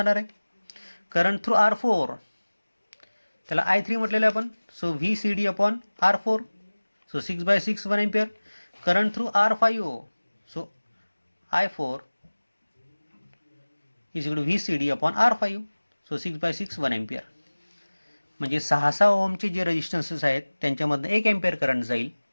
आहे. Current through R4, त्याला I3 म्हटलेलं आहे आपण. So VCD upon R4. So 6/6 1 ampere. Current through R5. So I4 is equal to VCD upon R5. So 6/6 1 ampere. म्हणजे 6 ओहमचे जे रेजिस्टन्सेस आहेत त्यांच्यामधनं 1 एम्पियर करंट जाईल.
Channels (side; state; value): both; inverted; correlation -1.00